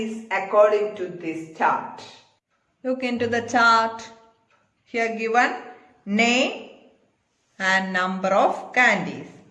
according to this chart. Look into the chart. Here given name and number of candies.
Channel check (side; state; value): both; identical; correlation 1.00